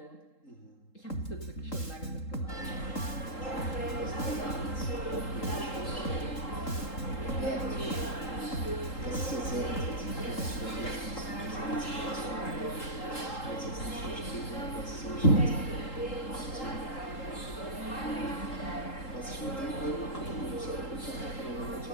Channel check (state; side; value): late; right; 3.8 ms